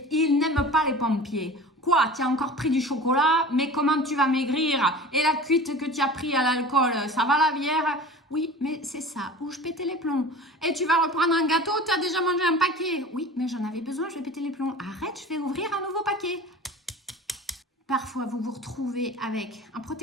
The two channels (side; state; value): both; normal; correlation 0.38